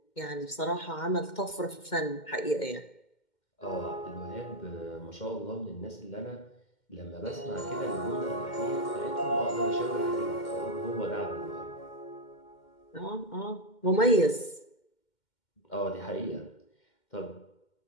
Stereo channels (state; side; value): late; right; 2.1 ms